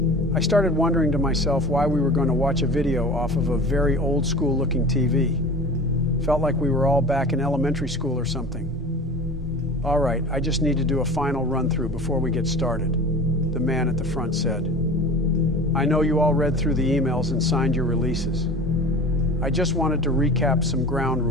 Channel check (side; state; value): right; noise; rumble, 16 dB below the sound